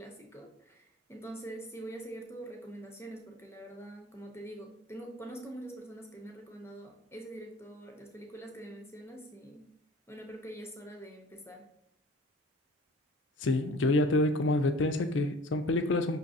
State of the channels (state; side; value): normal; both; correlation 0.45